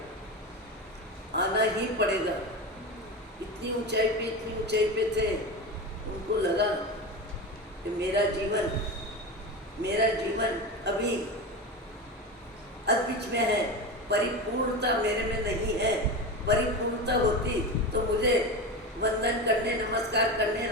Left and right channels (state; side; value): normal; both; correlation 0.23